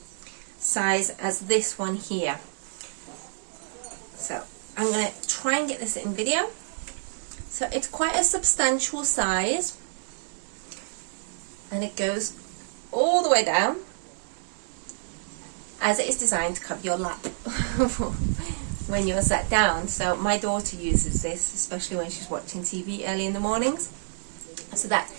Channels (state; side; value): silent; left; digital silence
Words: size as this one here. So I'm going to try and get this in video. So it's quite a substantial size, and it goes all the way down, as it is designed to cover your lap when you're sat down. So my daughter uses this, especially when she's watching TV early in the mornings. So that